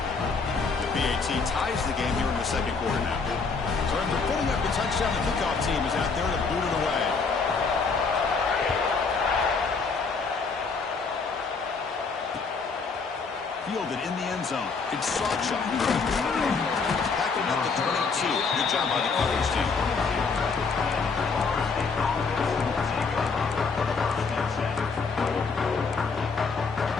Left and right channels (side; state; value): right; quieter; 4.8 dB